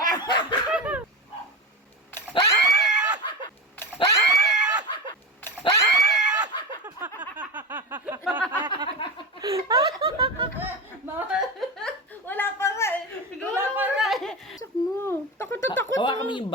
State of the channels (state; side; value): normal; both; correlation 0.21